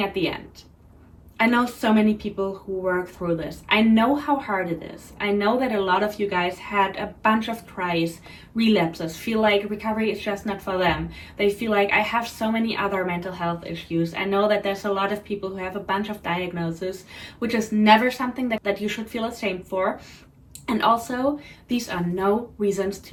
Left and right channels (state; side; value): identical; both; correlation 1.00